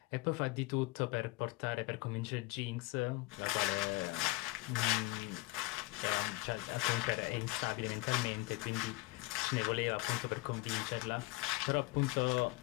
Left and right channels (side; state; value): right; quieter; 20.9 dB